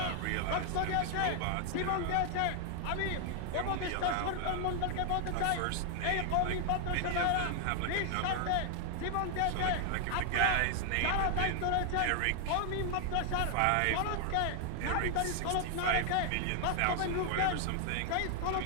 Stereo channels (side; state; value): both; different; correlation 0.00